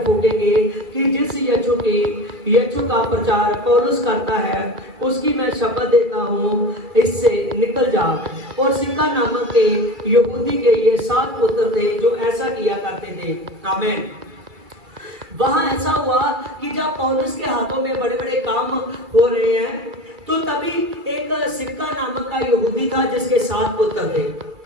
फूकेंगे कि जिस यीशु का प्रचार पौलुस करता है उसकी मैं शपथ देता हूँ, इससे निकल जा। और सिक्का नामक के यहूदी के ये 7 पुत्र थे जो ऐसा किया करते थे। आमीन। वहां ऐसा हुआ कि जब पौलुस के हाथों में बड़े बड़े काम हो रहे हैं तो तभी एक सिक्का नामक का यहूदी था जिसके 7 पुत्र थे।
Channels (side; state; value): left; late; 2.3 ms